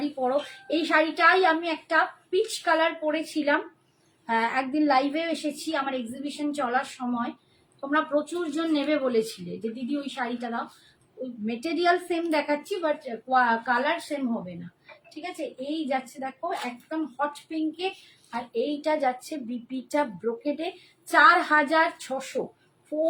পরো, এই শাড়িটাই আমি একটা পিচ কালার পরেছিলাম, একদিন লাইভেও এসেছি আমার এক্সিবিশন চলার সময়, তোমরা প্রচুর জন নেবে বলেছিলে যে দিদি ওই শাড়িটা দাও, ওই মেটেরিয়াল সেম দেখাচ্ছি বাট কালার সেম হবে না। ঠিক আছে এই যাচ্ছে দেখো একদম হট পিঙ্কে, আর এইটা যাচ্ছে বিপিটা ব্রোকেডে 4600,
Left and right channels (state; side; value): identical; both; correlation 1.00